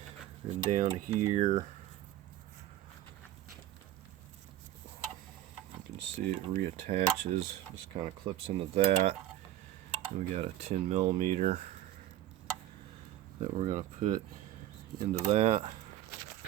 then down here, you can see it reattaches, just kind of clips into that. We got a 10mm that we're going to put into that.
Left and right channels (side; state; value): left; quieter; 13.5 dB